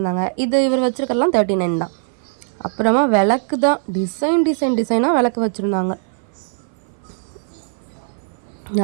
இது இவர் வச்சுருக்கலாம் 39 தான். அப்புறமா விளக்கு தான், டிசைனாக விளக்கு வச்சுருந்தாங்க.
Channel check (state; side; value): silent; left; 58 dB below the other